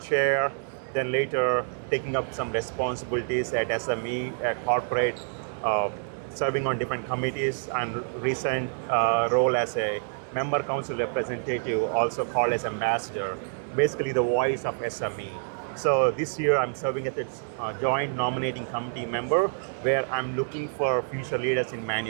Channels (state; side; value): silent; left; 60 dB below the other